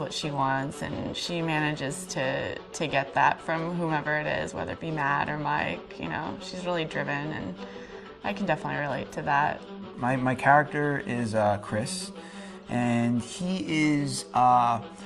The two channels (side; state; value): both; identical; correlation 1.00